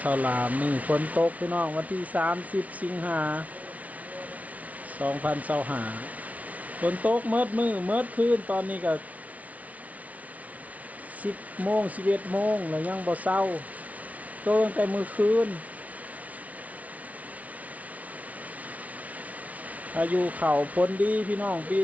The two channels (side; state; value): left; late; 0.069 ms